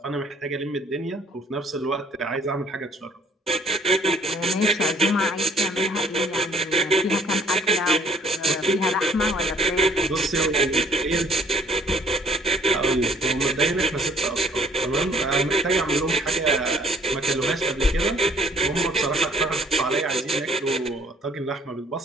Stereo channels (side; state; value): both; normal; correlation 0.60